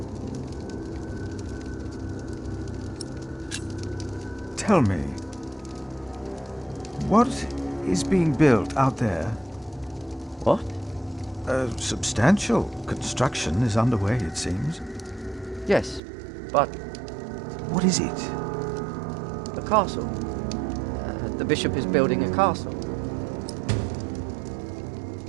Tell me, what is being built out there? What? A substantial construction is underway, it seems. Yes, but... What is it? A castle. The bishop is building a castle.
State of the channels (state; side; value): drops out; left; at 16.0 s